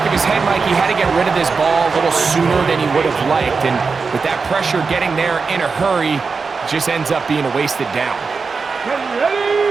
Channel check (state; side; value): quieter; left; 4.8 dB